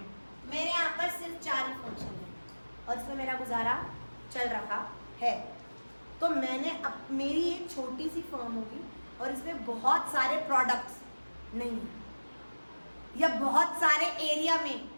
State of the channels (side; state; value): both; inverted; correlation -1.00